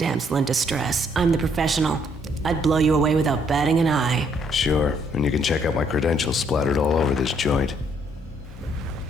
in distress. I'm the professional. I'd blow you away without batting an eye. Sure, and you can check out my credentials splattered all over this joint.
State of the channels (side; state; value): both; normal; correlation 0.68